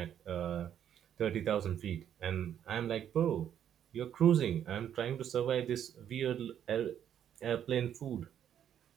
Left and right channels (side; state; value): left; quieter; 9.7 dB